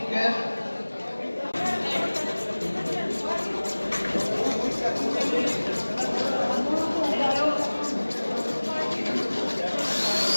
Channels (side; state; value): both; inverted; correlation -1.00